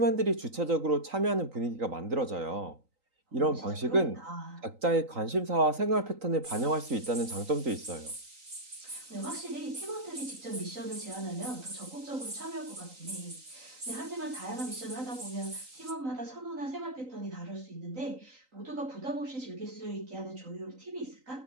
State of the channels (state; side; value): late; left; 3.9 ms